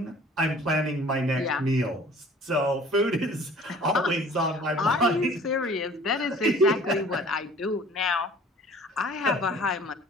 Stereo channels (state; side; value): normal; both; correlation 0.49